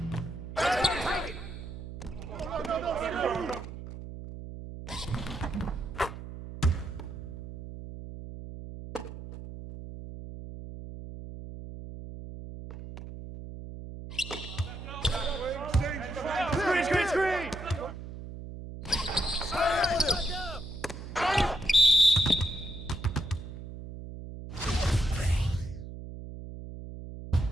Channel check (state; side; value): noise; right; hum, 10 dB below the sound